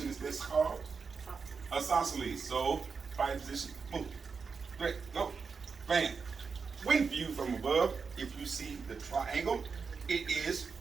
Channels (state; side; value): quieter; left; 5.3 dB